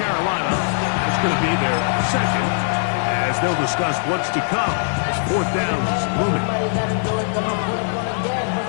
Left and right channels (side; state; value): right; silent; digital silence